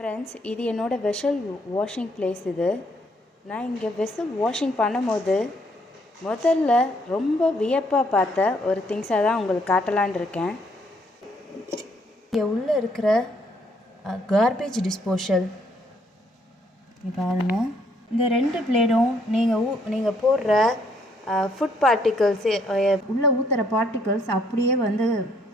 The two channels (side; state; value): both; normal; correlation 0.69